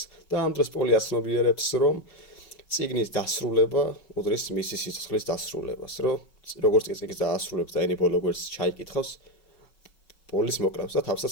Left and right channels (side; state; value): right; late; 5.3 ms